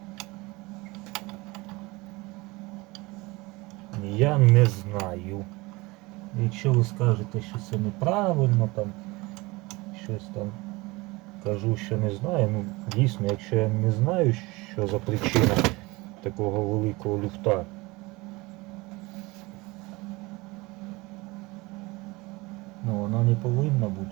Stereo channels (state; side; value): quieter; left; 23.2 dB